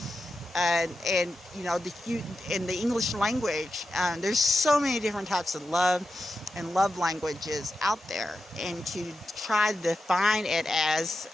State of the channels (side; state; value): both; normal; correlation 0.90